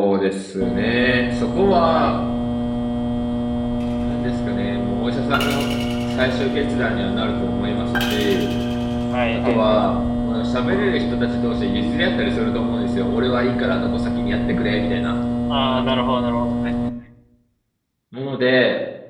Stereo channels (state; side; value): identical; both; correlation 1.00